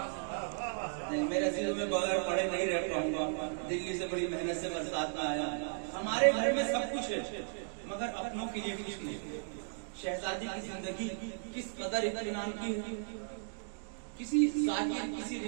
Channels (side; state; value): left; silent; digital silence